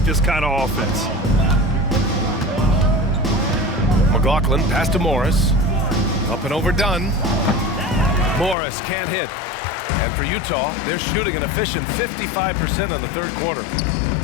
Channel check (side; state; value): right; drops out; at 8.6 s